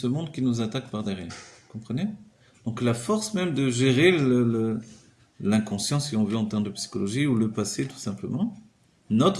monde qui nous attaque par derrière. Vous comprenez? Donc la force même de gérer l'inconscient, si on veut, en termes de psychologie, ou le passé tout simplement,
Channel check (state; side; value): identical; both; correlation 1.00